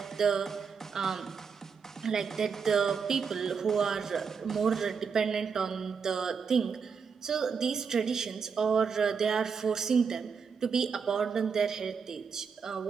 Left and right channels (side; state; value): left; quieter; 5.9 dB